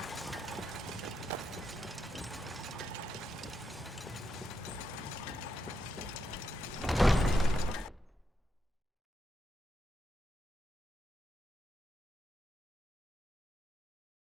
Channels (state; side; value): normal; both; correlation 0.83